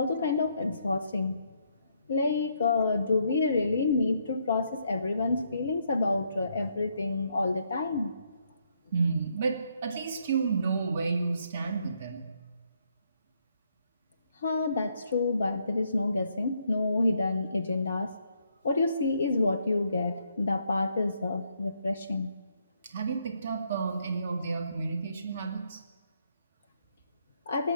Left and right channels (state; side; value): inverted; both; correlation -0.73